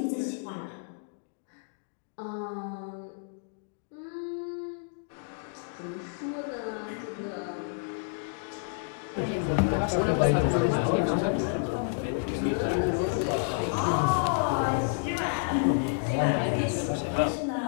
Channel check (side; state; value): right; silent; digital silence